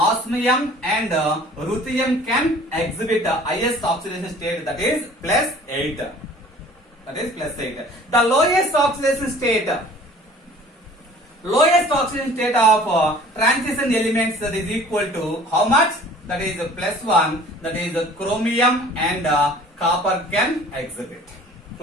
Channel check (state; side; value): normal; both; correlation 0.49